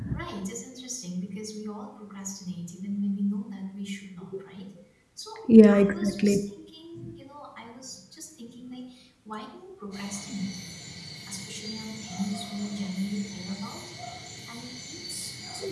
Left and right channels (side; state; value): both; identical; correlation 1.00